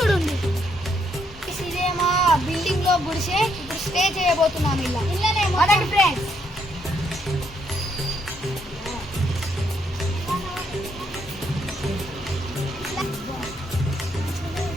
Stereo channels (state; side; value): normal; both; correlation 0.74